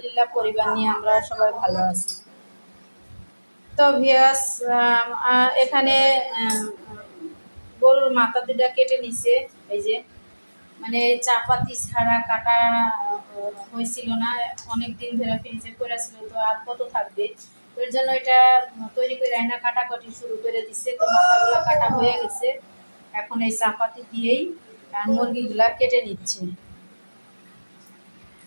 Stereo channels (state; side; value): inverted; both; correlation -1.00